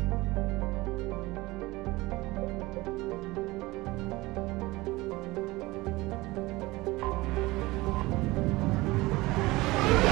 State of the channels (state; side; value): quieter; left; 20.9 dB